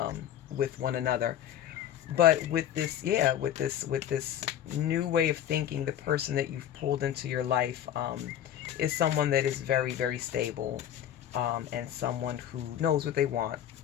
with one another. But with this, yeah, with this new way of thinking, the person that you've pulled into your life is someone that is very, very stable, and someone who knows what they want,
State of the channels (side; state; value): right; quieter; 10.7 dB